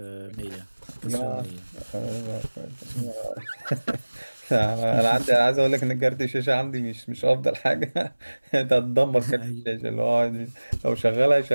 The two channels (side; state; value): both; inverted; correlation -1.00